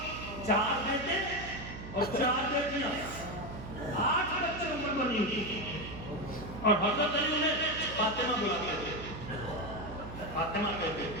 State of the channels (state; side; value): noise; right; hum, 10 dB below the sound